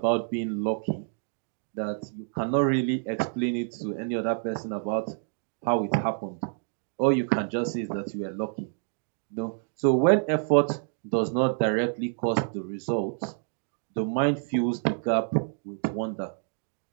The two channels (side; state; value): left; silent; 59 dB below the other